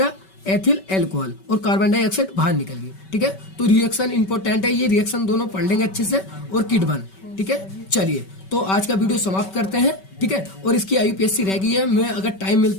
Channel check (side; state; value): right; late; 5.2 ms